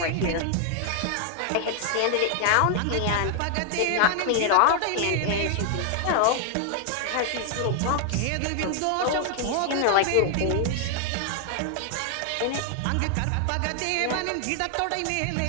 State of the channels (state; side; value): different; both; correlation 0.00